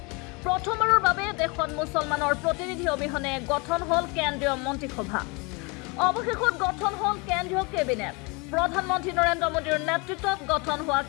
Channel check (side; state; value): right; quieter; 29.0 dB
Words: প্ৰথমবাৰৰ বাবে দেশত মুছলমানৰ প্ৰতিনিধি অবিহনে গঠন হল কেন্দ্ৰীয় মন্ত্ৰীসভা অৱশেষত গঠন হল কেন্দ্ৰীয় কেবিনেট প্ৰধানমন্ত্ৰী নৰেন্দ্ৰ মোদীৰ নেতৃত্বত গঠন হোৱা